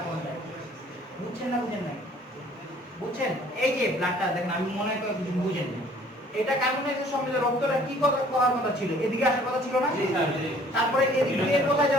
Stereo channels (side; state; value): both; normal; correlation 0.55